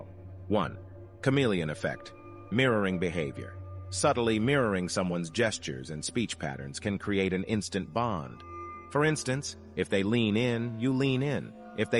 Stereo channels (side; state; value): both; identical; correlation 1.00